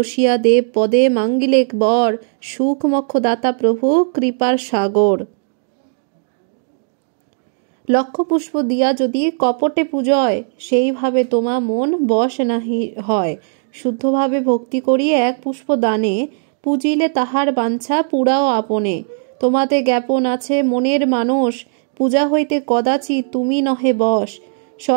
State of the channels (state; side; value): silent; left; digital silence